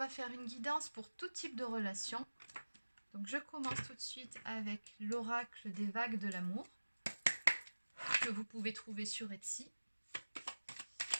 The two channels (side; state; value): both; inverted; correlation -1.00